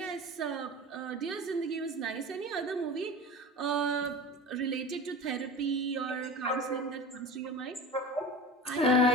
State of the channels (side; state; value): both; normal; correlation 0.32